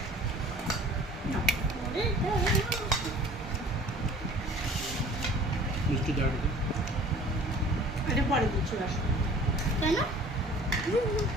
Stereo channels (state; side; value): normal; both; correlation 0.48